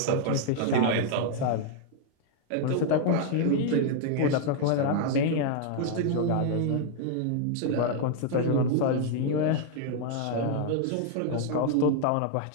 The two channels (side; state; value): both; different; correlation 0.00